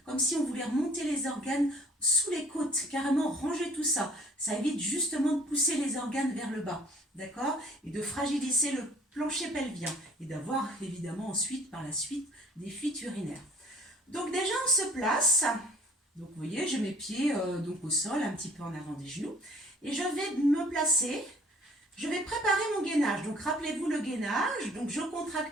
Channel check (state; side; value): normal; both; correlation 0.54